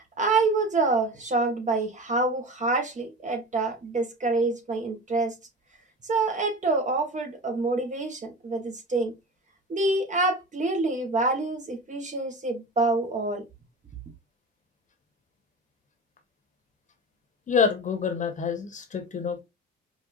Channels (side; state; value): both; normal; correlation 0.31